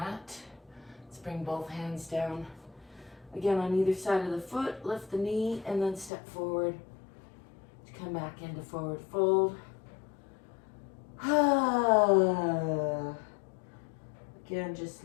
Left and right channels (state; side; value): drops out; right; at 6.1 s